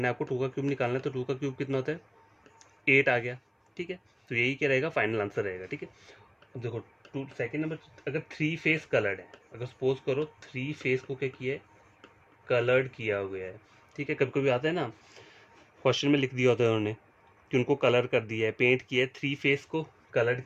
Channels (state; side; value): identical; both; correlation 1.00